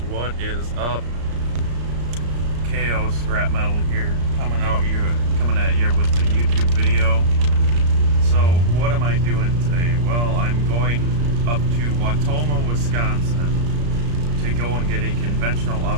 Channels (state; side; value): late; left; 34 ms